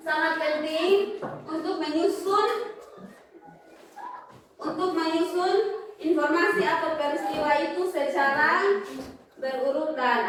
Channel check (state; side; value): identical; both; correlation 1.00